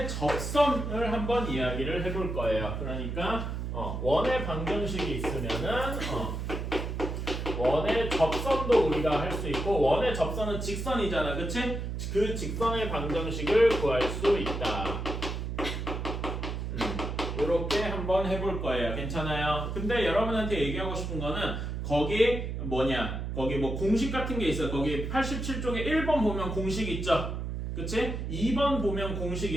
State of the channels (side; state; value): right; noise; hum, 4 dB below the sound